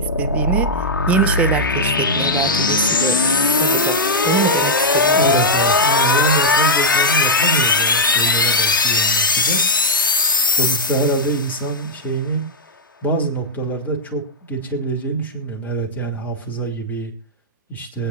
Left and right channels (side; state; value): both; normal; correlation -0.06